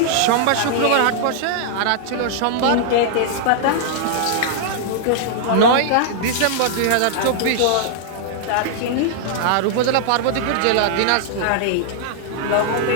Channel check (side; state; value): both; different; correlation -0.01